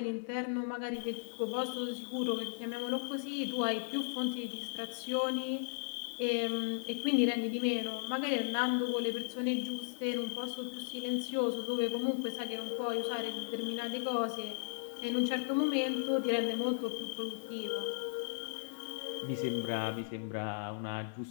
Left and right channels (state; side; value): silent; right; digital silence